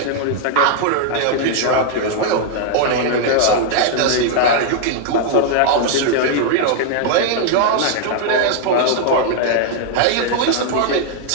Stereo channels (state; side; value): different; both; correlation 0.00